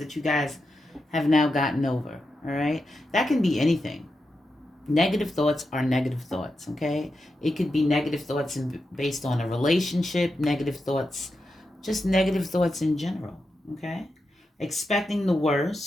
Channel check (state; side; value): normal; both; correlation 0.88